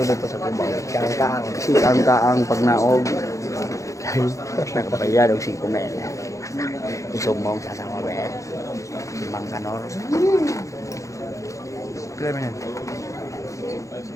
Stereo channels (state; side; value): late; right; 0.15 ms